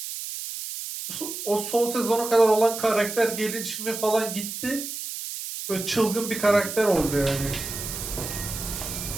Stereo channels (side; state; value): right; noise; hiss, 7 dB below the sound